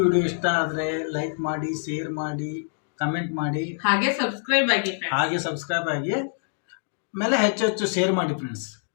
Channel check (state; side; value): silent; right; digital silence